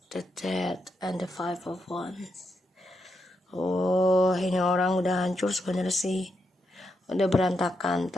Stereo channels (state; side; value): normal; both; correlation 0.83